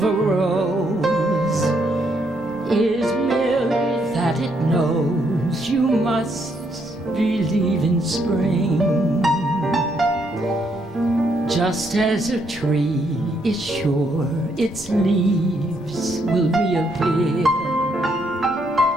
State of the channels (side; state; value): both; normal; correlation 0.74